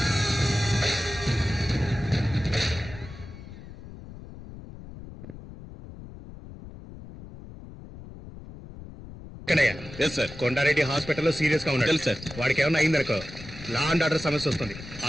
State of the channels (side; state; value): left; noise; rumble, 15 dB below the sound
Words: కొండారెడ్డి హాస్పిటల్లో సీరియస్ గా ఉన్నాడు సార్. వాడికి ఏమన్నా అయిందనుకో లా అండ్ ఆర్డర్ సమస్య వస్తుంది.